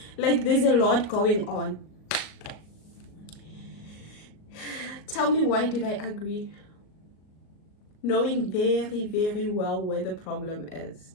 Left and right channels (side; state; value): right; late; 38 ms